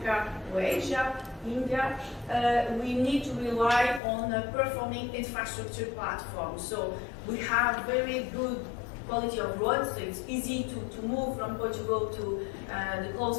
or Asia, India, we need to rely on a performing infrastructure platform. So we have very good quality of roads, so it's easy to move from Portugal to the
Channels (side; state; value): right; drops out; at 4.0 s